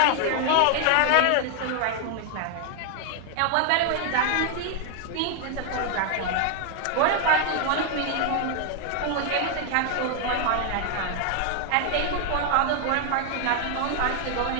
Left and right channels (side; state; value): both; different; correlation 0.00